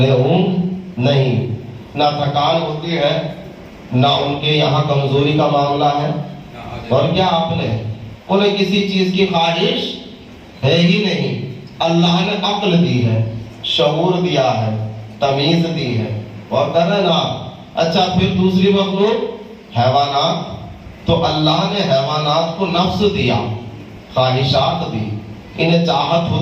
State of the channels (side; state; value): both; identical; correlation 1.00